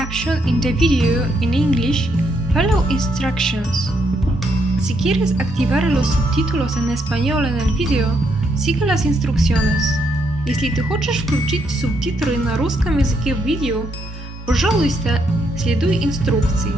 in the video in English, follow instructions. Si quieres activar los subtítulos en español en el video, sigue las instrucciones. Если ты хочешь включить субтитры на русском языке в видео, пожалуйста, следуй инструкции.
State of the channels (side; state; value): both; normal; correlation 0.76